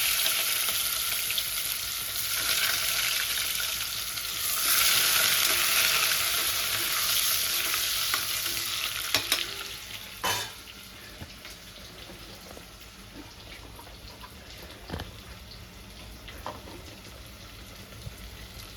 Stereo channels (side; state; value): both; identical; correlation 1.00